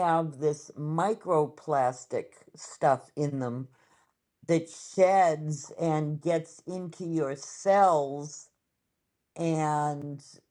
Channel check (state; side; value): identical; both; correlation 1.00